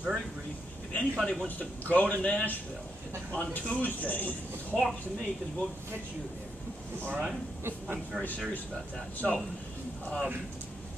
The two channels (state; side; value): normal; both; correlation 0.81